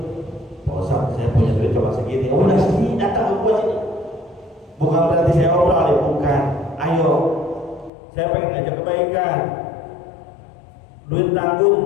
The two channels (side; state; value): right; drops out; at 7.9 s